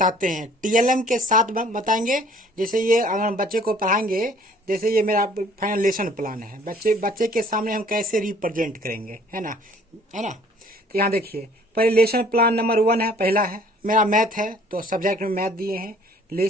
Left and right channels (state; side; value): normal; both; correlation 0.56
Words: हैं। टीएलएम के साथ बताएंगे। जैसे ये अगर हम बच्चे को पढ़ाएंगे, जैसे ये मेरा फाइनल लेसन प्लान है, बच्चे बच्चे के सामने हम कैसे रिप्रेजेंट करेंगे, है ना। तो यहाँ देखिए, पहले लेसन प्लान नंबर 1 है, पहला है मेरा मैथ है, तो सब्जेक्ट में मैथ दिए हैं।